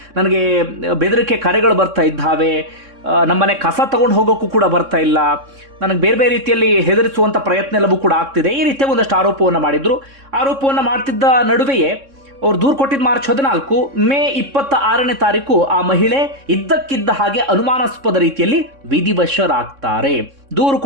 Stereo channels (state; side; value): late; left; 3.6 ms